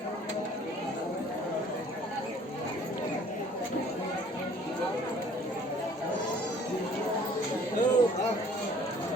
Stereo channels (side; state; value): both; normal; correlation 0.55